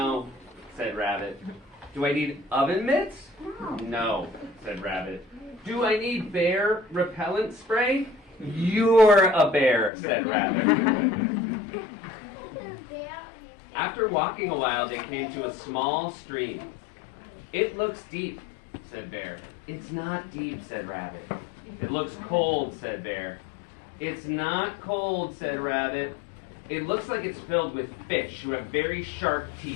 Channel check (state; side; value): drops out; right; at 9.9 s